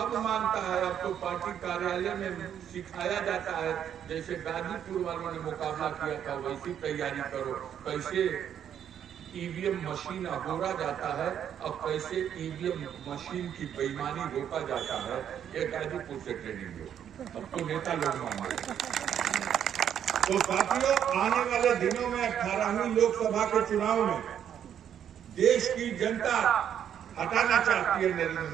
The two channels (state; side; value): quieter; left; 9.3 dB